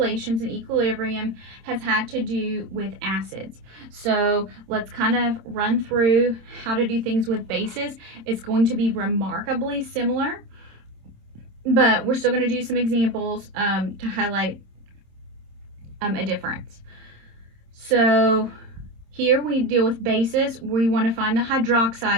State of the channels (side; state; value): left; late; 26 ms